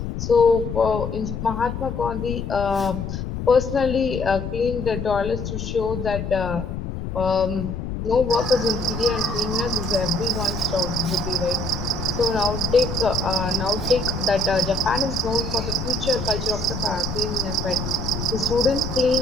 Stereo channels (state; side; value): noise; left; rumble, 5 dB below the sound